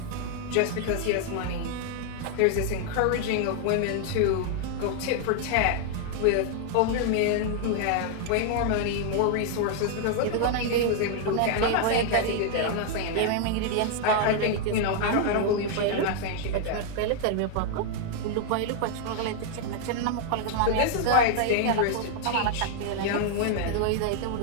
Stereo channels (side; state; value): both; different; correlation 0.00